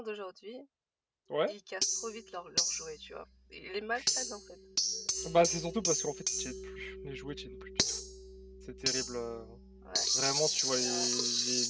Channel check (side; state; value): both; identical; correlation 1.00